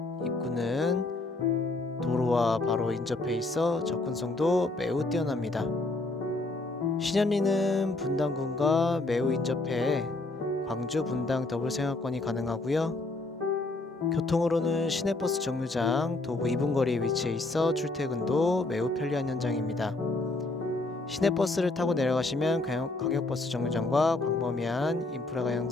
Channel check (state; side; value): quieter; right; 3.0 dB